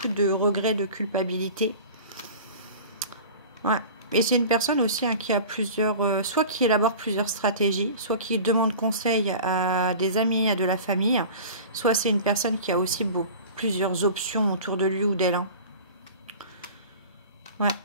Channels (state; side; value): inverted; both; correlation -0.38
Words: de regrets, de culpabilité. Ouais. Et c'est une personne aussi qui a plusieurs... soit qui élabore plusieurs stratégies, soit qui demande conseil à des amis, à de la famille. Soit c'est une personne qui a aussi plusieurs options autour de lui ou d'elle. Hein. Ouais.